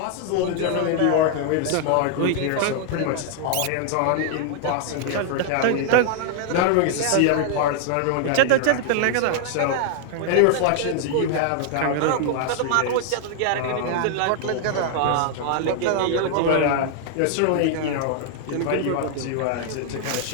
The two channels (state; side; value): different; both; correlation 0.00